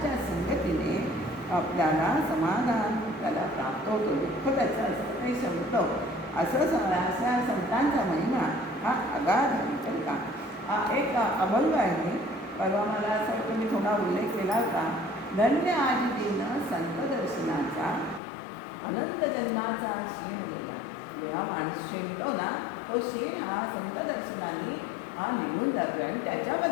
संगतीने आपल्याला समाधान त्याला प्राप्त होतो. दुःख त्याचं असतं ते संपतं. अशा संतांचा महिमा हा अगाध आहे. तर का एक अभंग आहे, परवा मला असं वाटतं मी थोडा उल्लेख केला होता. धन्य आजी दिन संत दर्शनाचा, अनंत जन्माचा क्षीण गेला. जेव्हा माणूस शिणतो ना, तो क्षीण हा संत दर्शनाने हा निघून जातो. आणि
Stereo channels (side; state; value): right; drops out; at 18.2 s